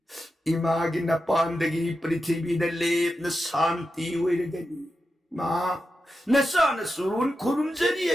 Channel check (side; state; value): both; normal; correlation 0.89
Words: ima ginapandagi pritibi na lep na santi way nagani. Ma, nasana surun kurumjari